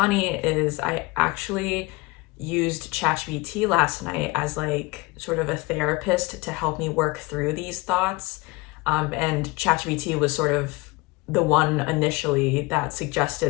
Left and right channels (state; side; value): quieter; right; 23.9 dB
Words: is I actually used ChatGPT last night as like sort of a therapist to help me work through these thoughts. And ChatGPT was sort of the one initially that